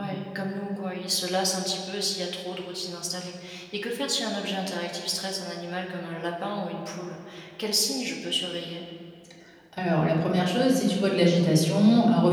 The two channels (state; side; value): identical; both; correlation 1.00